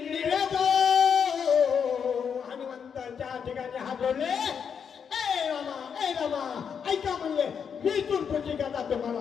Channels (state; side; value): quieter; right; 7.1 dB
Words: निवेदो हनुमंताच्या ठिकाणी हात जोडले ए रामा ऐका म्हणले मी तुमची कथा